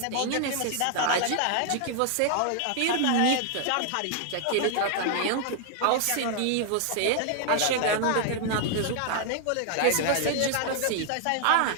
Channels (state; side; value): different; both; correlation 0.00